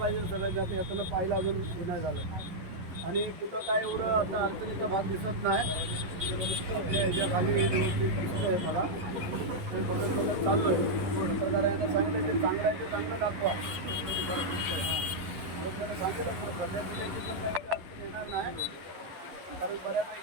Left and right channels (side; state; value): left; late; 11 ms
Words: सगळं. जाते येताना पाहिलं अजून हे नाही झालं. आणि कुठं काय एवढं आता अडचणीचा भाग दिसत नाही. ह्याच्या खाली व्यवस्थित दिसतं आहे मला, ते बघत चालू आहे. पत्रकार यांना सांगितलं ते चांगलं आहे, ते चांगलं दाखवा. त्यांना सांगितलं सध्या दिल्याची पण काही अडचण येणार नाही, कारण बऱ्यापैकी